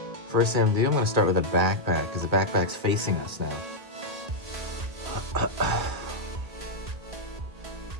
First thing I'm gonna do, I'm gonna start with a backpack because the backpack's facing us now.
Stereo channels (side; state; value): left; late; 1.8 ms